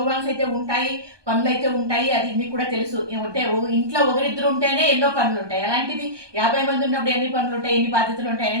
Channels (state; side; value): late; left; 1.2 ms